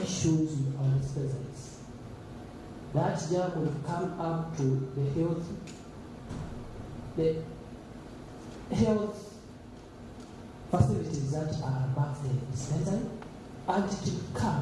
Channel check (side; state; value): both; identical; correlation 1.00